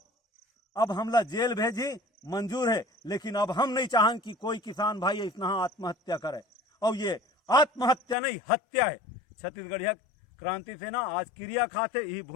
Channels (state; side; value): drops out; right; at 8.2 s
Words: अब हमला जेल भेजी मंजूर है। लेकिन अब हम नहीं चाहें कि कोई किसान भाई इतना आत्महत्या करे, और ये आत्महत्या नहीं हत्या है। छत्तीसगढ़िया क्रांति सेना आज क्रिया खाते ही